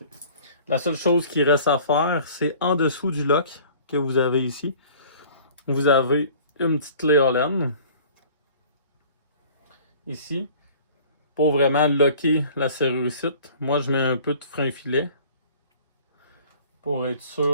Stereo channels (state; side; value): inverted; both; correlation -0.49